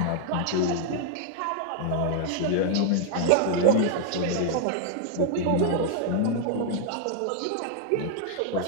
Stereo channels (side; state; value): both; different; correlation 0.00